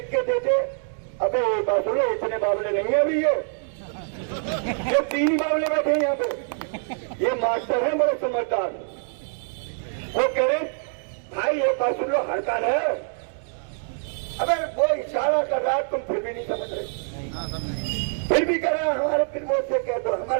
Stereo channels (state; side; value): silent; left; digital silence